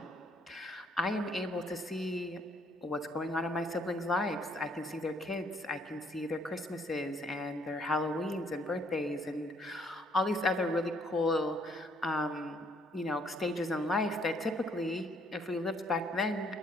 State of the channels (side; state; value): both; normal; correlation 0.66